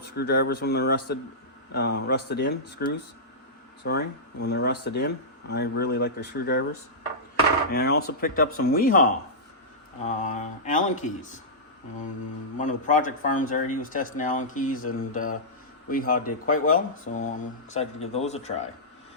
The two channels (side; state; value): both; normal; correlation -0.14